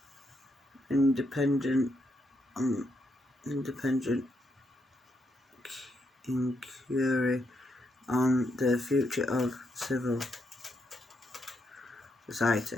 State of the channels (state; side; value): normal; both; correlation 0.79